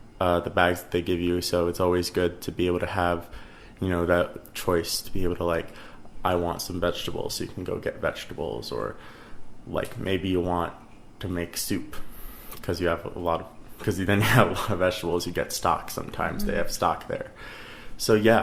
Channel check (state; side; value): identical; both; correlation 1.00